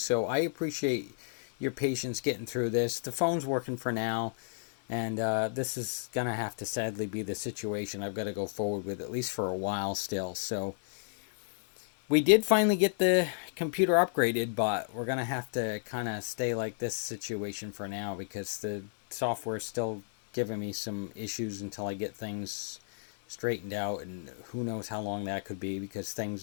so I appreciate your patience getting through this. The phone's working for now. And this is going to have to sadly be the situation I've got to go forward with, at least for a while still. So we did finally get the computer upgraded, but we're going to have to kind of stay like this situation for now because the software is still giving me some issues until I get things straightened out. And who knows how long that could be because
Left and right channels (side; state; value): right; silent; digital silence